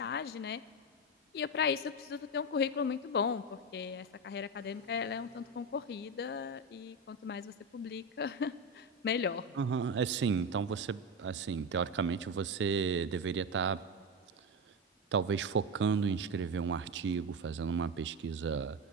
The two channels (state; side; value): normal; both; correlation 0.16